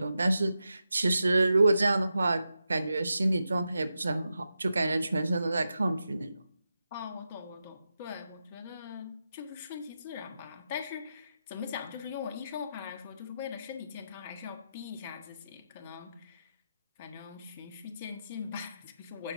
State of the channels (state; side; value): inverted; both; correlation -0.88